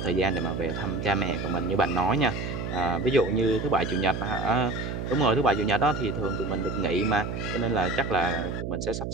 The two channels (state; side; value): noise; right; hum, 5 dB below the sound